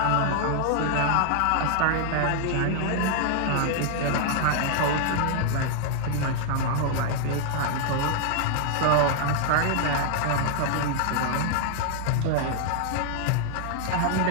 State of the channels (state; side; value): different; both; correlation 0.00